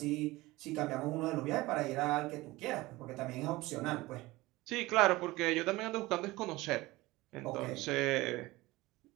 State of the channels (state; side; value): quieter; left; 19.9 dB